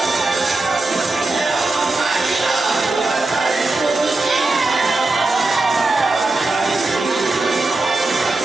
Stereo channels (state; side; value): quieter; left; 3.1 dB